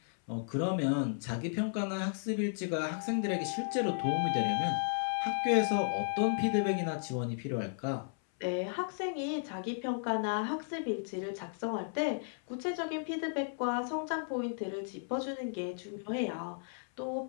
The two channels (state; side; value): silent; right; 55 dB below the other